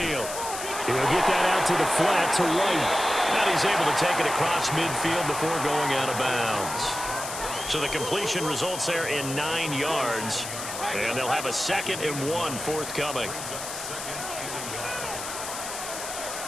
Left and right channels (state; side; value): noise; left; hiss, 7 dB below the sound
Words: He'll get that out to the flat to right. And he's able to take it across midfield before going out of bounds. So the completion results there in 9 yards. And they'll have a 2nd and 1 forthcoming.